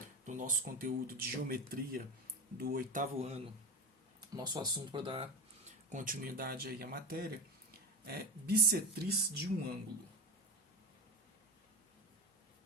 do nosso conteúdo de geometria do 8º ano. Nosso assunto para dar continuidade aí à matéria é bissetriz de um ângulo.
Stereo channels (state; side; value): normal; both; correlation 0.21